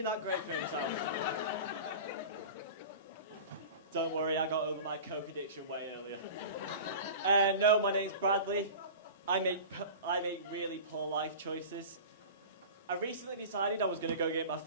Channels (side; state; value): both; inverted; correlation -0.35